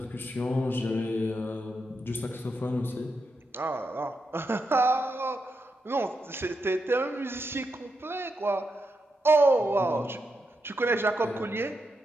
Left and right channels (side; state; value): both; normal; correlation 0.85